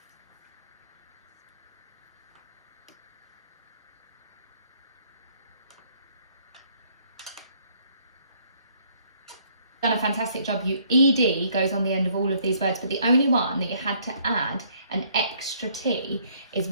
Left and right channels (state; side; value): inverted; both; correlation -0.65